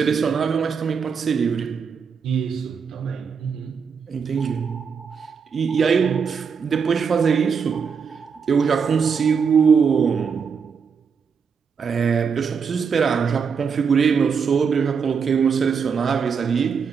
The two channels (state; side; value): quieter; left; 6.1 dB